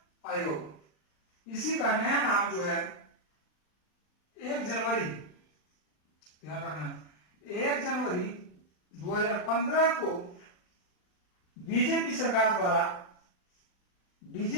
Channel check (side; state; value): right; late; 39 ms